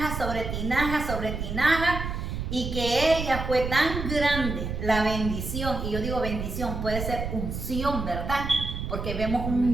sobre tinajas sobre tinajas, y que ella fue tan grande la bendición. Y yo digo bendición, puede ser unción, ¿verdad? Porque vemos un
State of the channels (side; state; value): right; noise; rumble, 5 dB below the sound